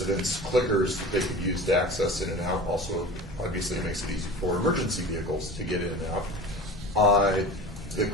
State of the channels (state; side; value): normal; both; correlation 0.36